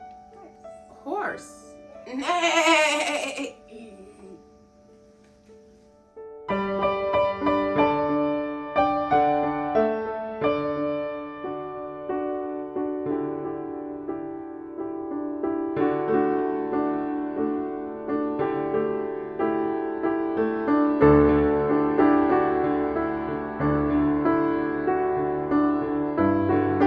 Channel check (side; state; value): both; identical; correlation 1.00